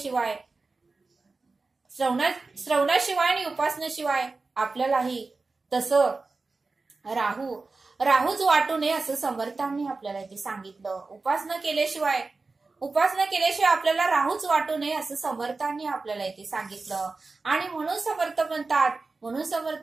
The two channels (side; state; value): left; quieter; 3.8 dB